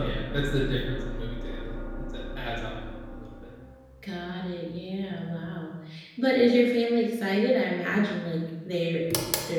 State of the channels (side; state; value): both; identical; correlation 1.00